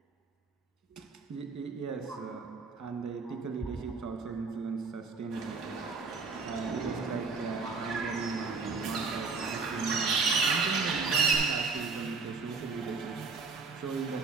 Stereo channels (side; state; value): left; quieter; 4.5 dB